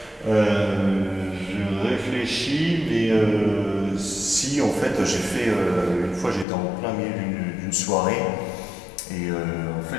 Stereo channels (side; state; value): right; drops out; at 6.5 s